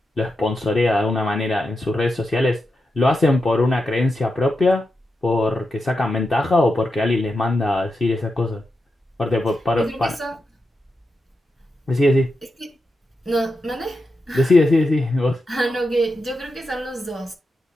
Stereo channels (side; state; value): both; normal; correlation 0.88